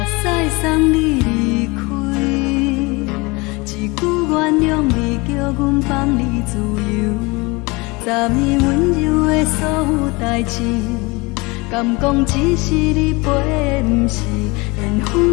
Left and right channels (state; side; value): quieter; right; 25.5 dB